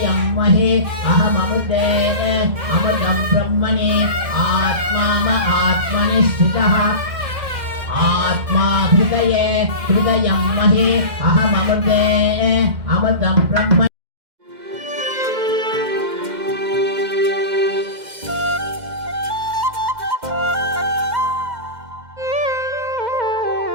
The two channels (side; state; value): left; late; 2.1 ms